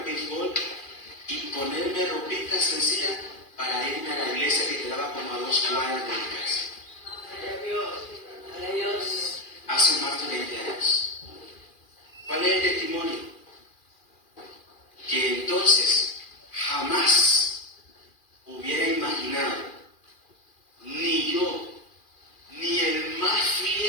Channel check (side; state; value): right; late; 2.4 ms